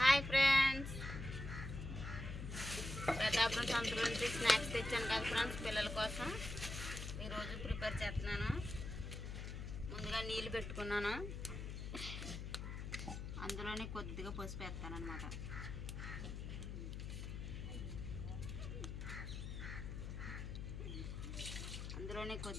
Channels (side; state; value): left; noise; hum, 6 dB below the sound